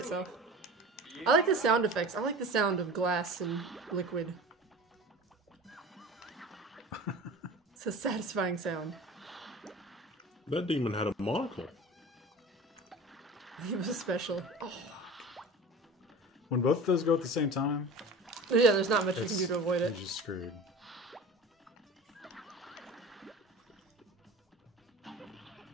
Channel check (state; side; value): normal; both; correlation 0.36